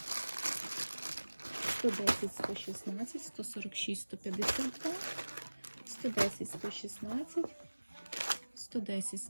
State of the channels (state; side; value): inverted; both; correlation -1.00